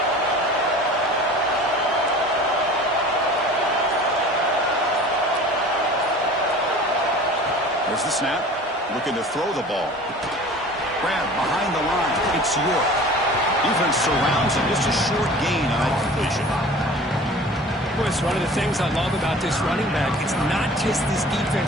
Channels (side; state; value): both; normal; correlation 0.43